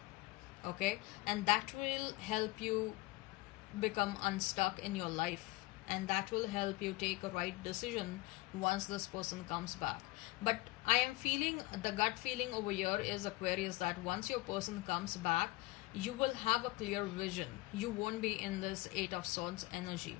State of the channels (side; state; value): right; quieter; 20.5 dB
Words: Okay, and that will help you become unstuck in your life, and that will help you take a right decision once this person comes back. But I am feeling, the gut feeling over here is, Aquarius, that once your person comes back, you will have a clear vision. You won't be in this Eight of Swords energy.